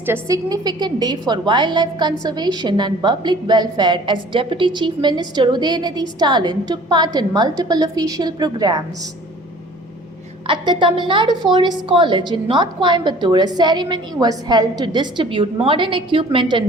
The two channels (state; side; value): normal; both; correlation 0.49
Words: a significant day for wildlife conservation and public welfare as Deputy Chief Minister Udayanidhi Stalin took part in multiple official programs. At the Tamil Nadu Forest College in North Coimbatore, a ceremony was held to distribute modern equipment